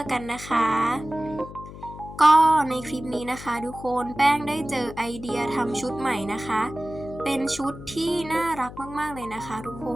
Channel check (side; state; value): left; noise; hum, 14 dB below the sound